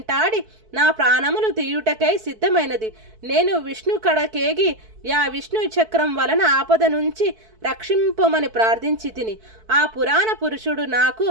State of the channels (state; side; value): late; left; 4.6 ms